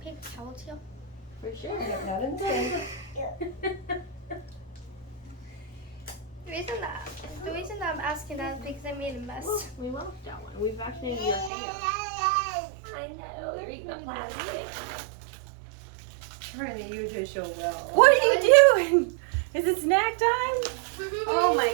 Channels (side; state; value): left; drops out; at 11.5 s